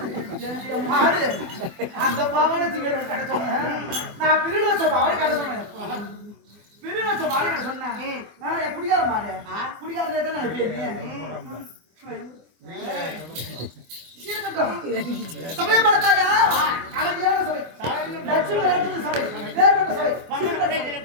என் மாடு அந்த பாவனை திங்க கடை சொன்னேன் நான் பிரிடு வச்ச பாவனை கடை சொன்னேன் பிரிடு வச்ச மாடு கடை சொன்னேன் என் குடிகார மாடு குடிகார தான் நினைப்பேன் இருக்கட்டும் சபையை பார்த்தாயா கலவையான சபை லட்சுமி லட்சுமி சபை வேறுபட்ட சபை பங்கன பிள்ளைகளை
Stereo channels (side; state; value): left; late; 24 ms